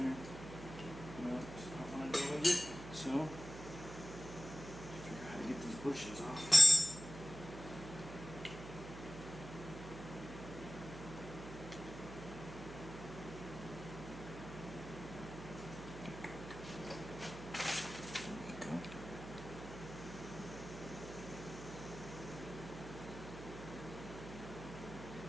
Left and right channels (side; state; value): right; noise; hum, 11 dB below the sound